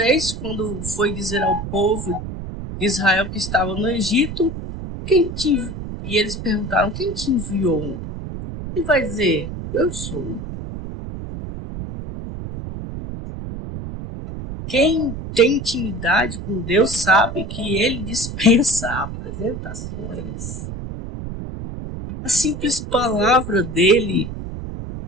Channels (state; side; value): noise; right; rumble, 8 dB below the sound